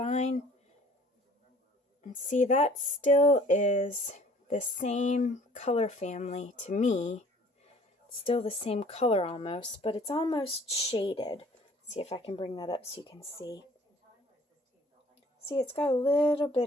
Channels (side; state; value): both; normal; correlation 0.53